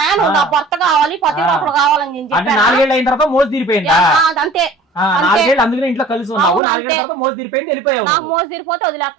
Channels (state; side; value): drops out; left; at 6.6 s